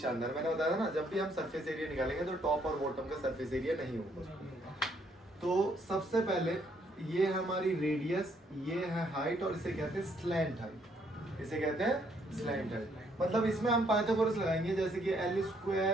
मैंने बताया था ना जब भी हम सरफेस एरिया निकालेंगे तो टॉप और बॉटम का सरफेस एरिया नहीं होगा। तो सबसे पहले ये है हमारी रेडियस, ये है हाइट और इसे कहते हैं स्लैंट हाइट, इसे कहते हैं स्लैंट हाइट। मतलब इसमें हम पाइथागोरस लगाएंगे जैसे कि l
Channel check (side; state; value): both; normal; correlation 0.69